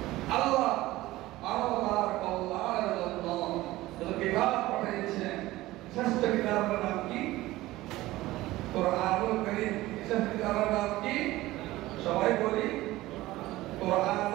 আল্লাহ মানবতার কল্যাণের জন্য যত কিতাব পাঠিয়েছেন, শ্রেষ্ঠ কিতাবের নাম কি? কোরআনুল কারীম। শ্রেষ্ঠ কিতাবের নাম কি? সবাই বলি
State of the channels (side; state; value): left; quieter; 17.5 dB